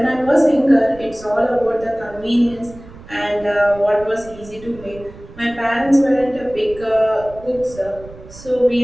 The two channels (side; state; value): right; noise; rumble, 18 dB below the sound